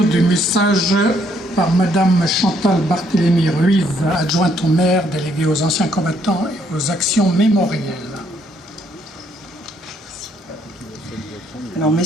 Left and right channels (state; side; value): normal; both; correlation 0.70